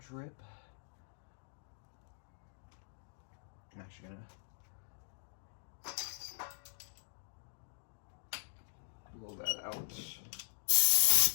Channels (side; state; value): right; silent; digital silence